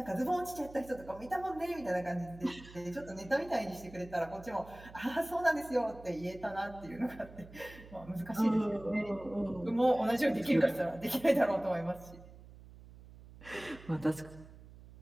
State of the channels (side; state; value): right; noise; hum, 19 dB below the sound